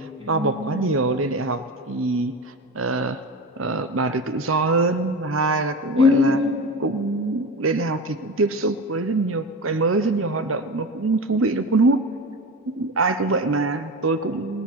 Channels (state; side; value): normal; both; correlation 0.26